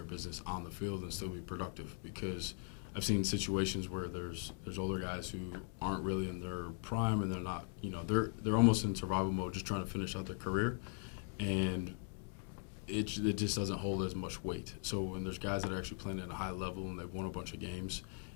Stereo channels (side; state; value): right; silent; 51 dB below the other